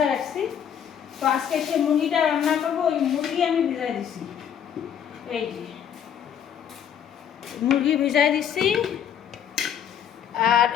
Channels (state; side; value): quieter; right; 8.8 dB